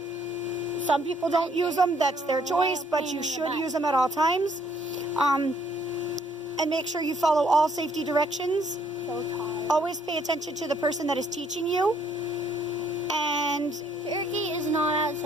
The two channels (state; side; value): normal; both; correlation 0.66